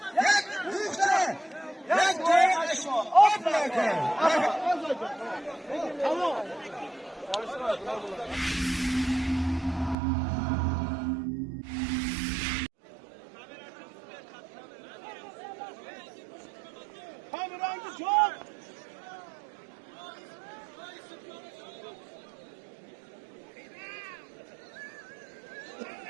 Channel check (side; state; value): left; drops out; at 10.0 s